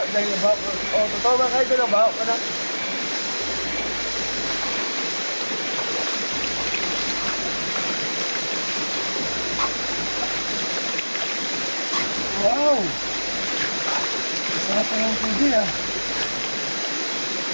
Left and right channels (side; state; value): both; inverted; correlation -1.00